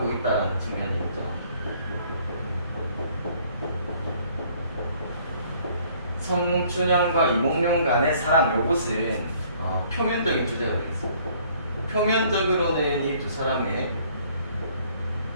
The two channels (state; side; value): inverted; both; correlation -0.60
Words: 있다는 측면이 있죠. 성춘향과 이몽룡 간의 사랑, 요것은 표면적인 주제가 되겠습니다. 표면적으로는 이 두 사람의